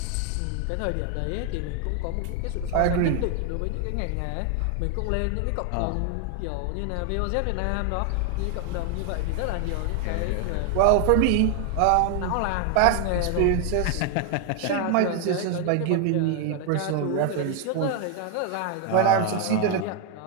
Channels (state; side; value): different; both; correlation 0.00